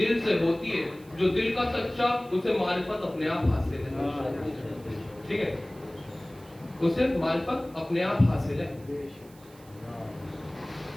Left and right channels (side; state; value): right; noise; hiss, 25 dB below the sound